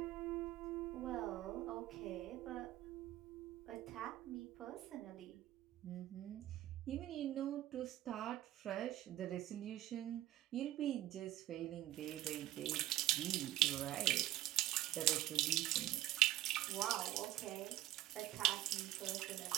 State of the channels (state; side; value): quieter; left; 14.6 dB